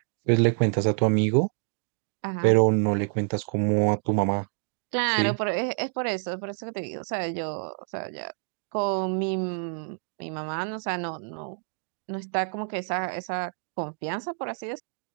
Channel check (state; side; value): silent; left; digital silence